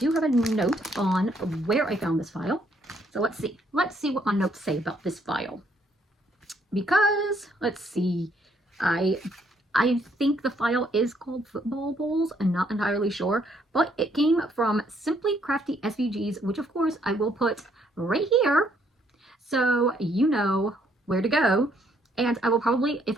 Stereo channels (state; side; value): normal; both; correlation 0.69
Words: have a note on where I found this file. So let's see what my notes say about this file. Because, let's see, I think the file is called Football Bowls. I'm not entirely sure, but it came from Simply Crafty SVGs, which of course I will put right here so you know where to go. And I will probably, if